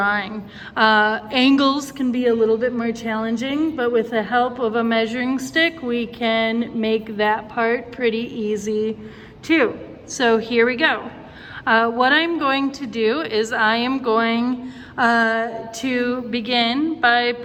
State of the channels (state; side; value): identical; both; correlation 1.00